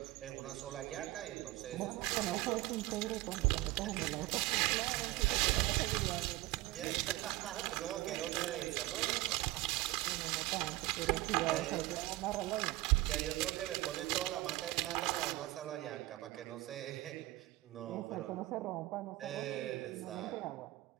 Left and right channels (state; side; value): quieter; left; 18.5 dB